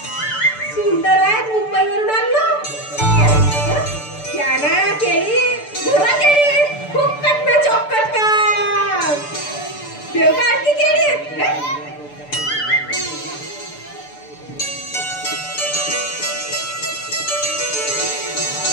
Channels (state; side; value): late; right; 6.8 ms